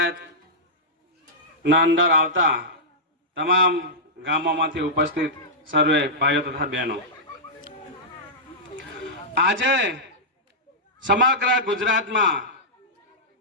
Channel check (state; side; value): normal; both; correlation -0.12